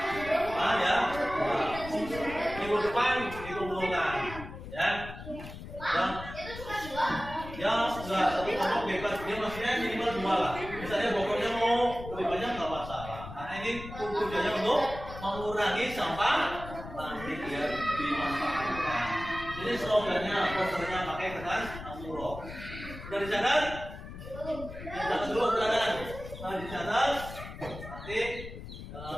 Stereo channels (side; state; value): left; noise; rumble, 12 dB below the sound